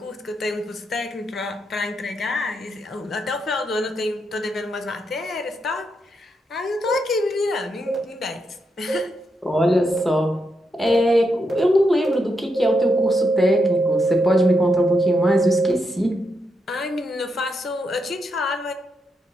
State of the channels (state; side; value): normal; both; correlation 0.82